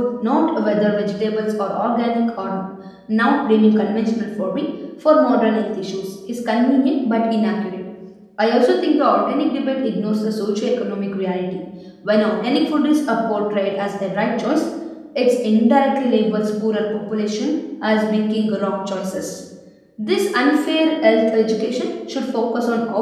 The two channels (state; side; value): identical; both; correlation 1.00